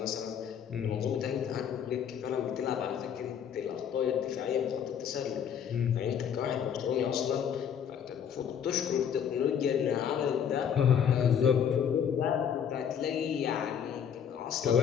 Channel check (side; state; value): right; quieter; 8.2 dB